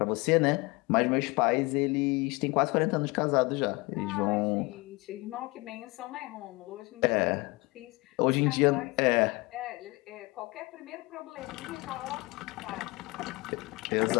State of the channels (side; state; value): right; quieter; 24.6 dB